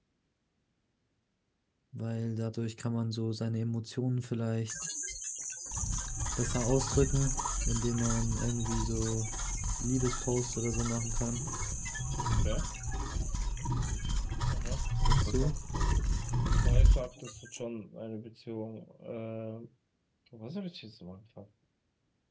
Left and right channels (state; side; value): identical; both; correlation 1.00